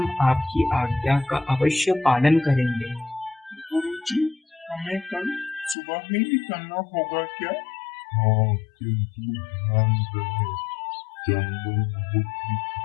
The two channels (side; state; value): right; drops out; at 5.8 s